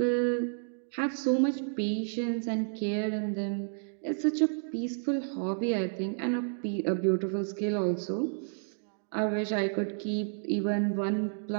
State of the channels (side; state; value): left; silent; digital silence